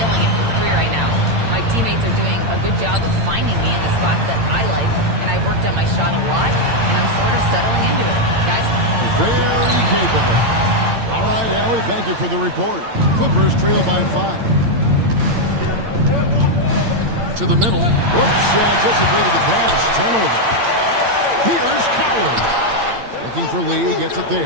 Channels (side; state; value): left; late; 8.8 ms